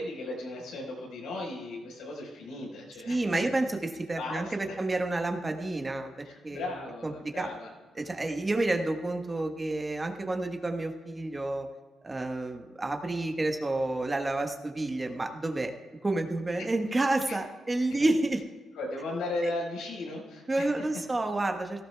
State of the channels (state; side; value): normal; both; correlation 0.92